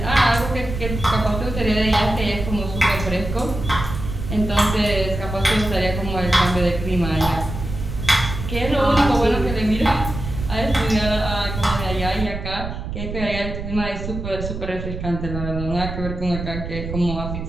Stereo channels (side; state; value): right; noise; rumble, 6 dB below the sound